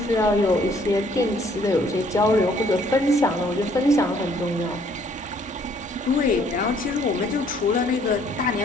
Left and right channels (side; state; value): both; normal; correlation 0.63